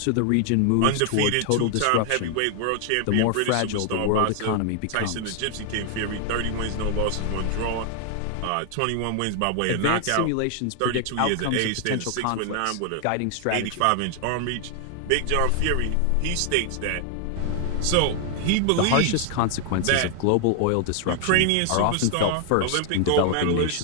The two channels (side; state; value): both; different; correlation 0.00